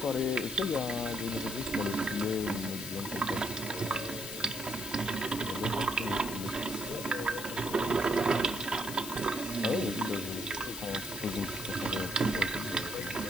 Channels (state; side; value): noise; left; hiss, 8 dB below the sound